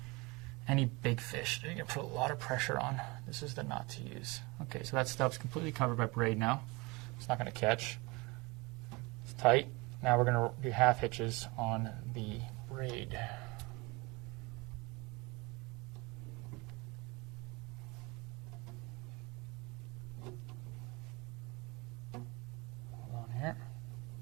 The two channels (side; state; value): left; quieter; 25.7 dB